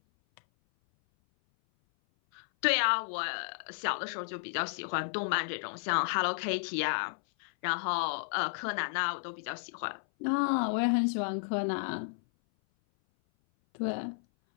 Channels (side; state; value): right; silent; 56 dB below the other